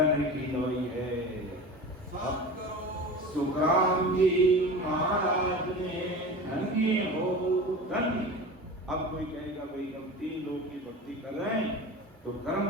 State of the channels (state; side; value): normal; both; correlation 0.33